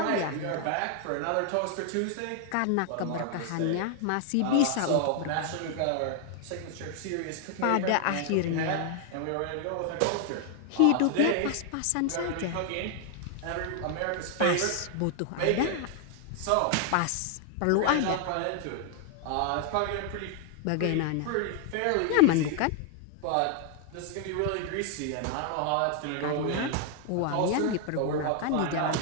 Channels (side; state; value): both; different; correlation 0.00